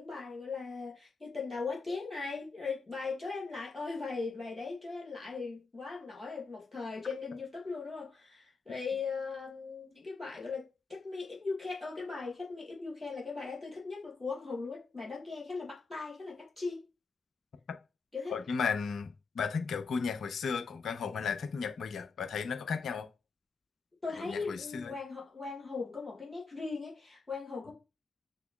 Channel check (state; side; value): quieter; right; 4.6 dB